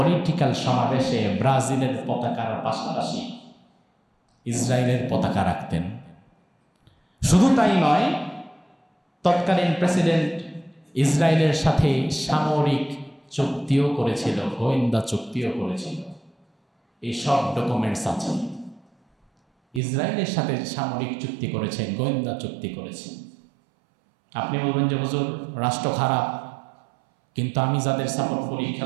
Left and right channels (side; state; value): left; drops out; at 19.8 s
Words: সমাবেশে ব্রাজিলের পতাকার পাশাপাশি ইসরায়েলের পতাকা রাখতেন। শুধু তাই নয়, তৎকালীন প্রেসিডেন্ট ইসরায়েলের সাথে সামরিক চুক্তিও করেছিল, গোয়েন্দা চুক্তিও করেছিল। এই সব ডকুমেন্টস আছে। ইসরায়েলের সাথে সামরিক চুক্তি করেছে, গোয়েন্দা চুক্তি করেছে। আপনি বলবেন যে হুজুর রাষ্ট্র খারাপ, কিন্তু আমি যাদের সাপোর্ট করি